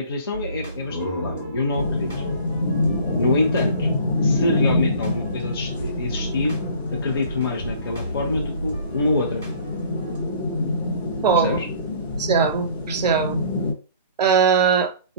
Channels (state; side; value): inverted; both; correlation -0.49